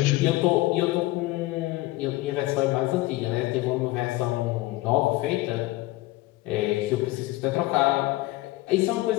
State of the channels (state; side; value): quieter; right; 18.7 dB